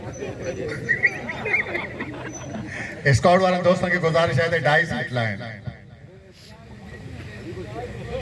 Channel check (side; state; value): both; identical; correlation 1.00